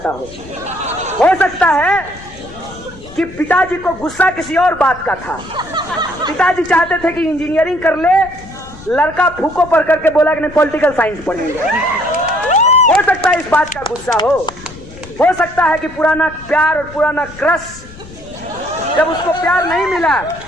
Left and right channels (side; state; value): left; noise; rumble, 18 dB below the sound